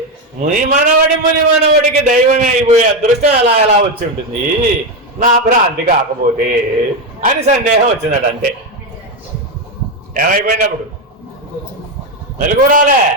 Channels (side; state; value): both; normal; correlation 0.09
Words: ముని మనవడికి దైవమే అయిపోయే అదృష్టం ఎలా వచ్చి ఉంటుంది నా భ్రాంతి కాకపోతే అని సందేహం వచ్చిందట. అంతే. ఏమైపోయినప్పుడు మెలకురాలే,